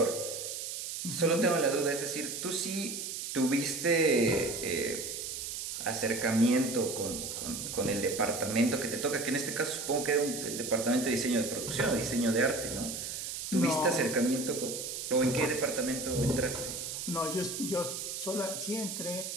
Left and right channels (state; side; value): noise; right; hiss, 5 dB below the sound